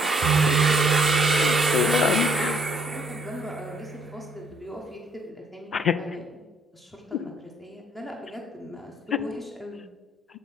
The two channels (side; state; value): both; normal; correlation 0.66